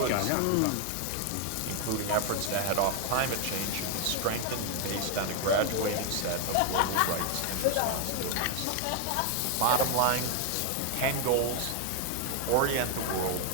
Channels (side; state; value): both; different; correlation 0.01